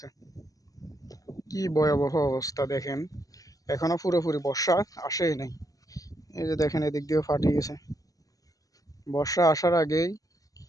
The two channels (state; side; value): late; right; 0.17 ms